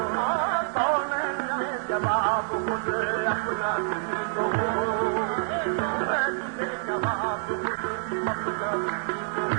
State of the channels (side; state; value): left; silent; 60 dB below the other